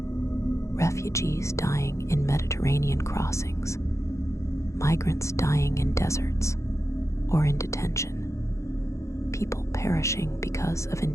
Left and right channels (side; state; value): right; late; 0.14 ms